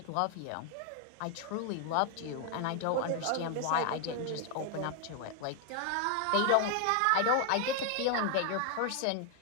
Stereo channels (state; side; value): different; both; correlation 0.00